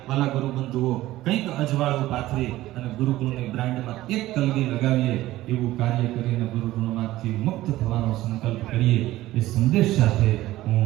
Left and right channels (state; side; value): quieter; left; 16.0 dB